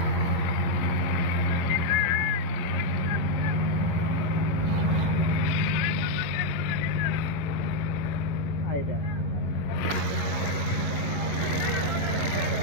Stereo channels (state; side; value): late; right; 11 ms